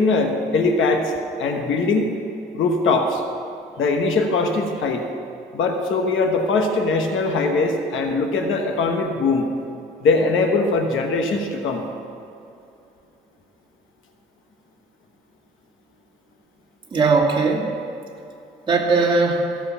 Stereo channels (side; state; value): both; normal; correlation 0.43